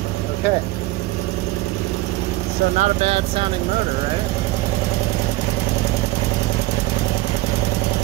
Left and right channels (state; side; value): quieter; left; 18.5 dB